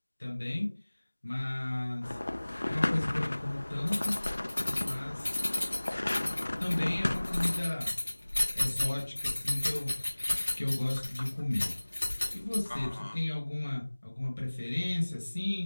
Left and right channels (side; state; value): both; inverted; correlation -1.00